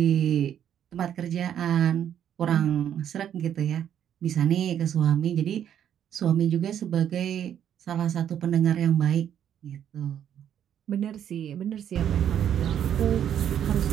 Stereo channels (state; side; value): quieter; left; 9.7 dB